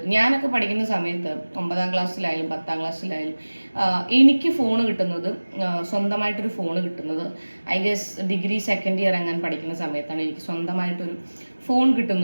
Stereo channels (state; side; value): inverted; both; correlation -1.00